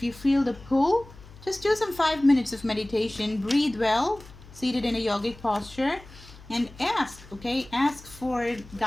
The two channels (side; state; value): left; noise; hum, 20 dB below the sound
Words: you feel the pull, just do some 5 minutes of meditation, breathe well, seated in a yogic posture, and ask, okay? Ask for